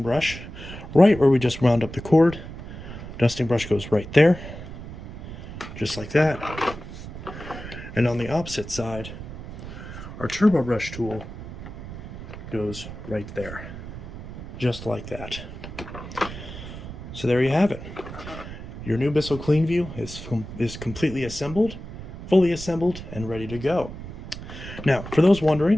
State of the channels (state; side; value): noise; right; rumble, 11 dB below the sound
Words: brush, right where we just wound up the cord, dusting brush goes right there, just like that. And on the opposite side, our turbo brush tool goes right there, just like that. So there you have it. Your new Bissell CleanView is completely assembled, fully assembled, and ready to go. Now, for those